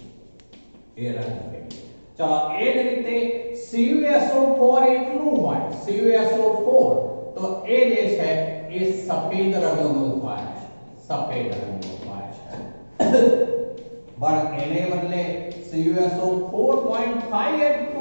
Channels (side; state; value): both; inverted; correlation -1.00